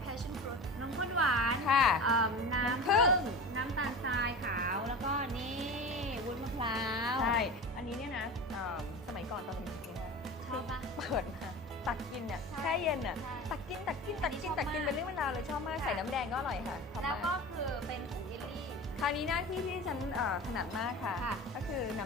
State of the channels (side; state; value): both; normal; correlation 0.32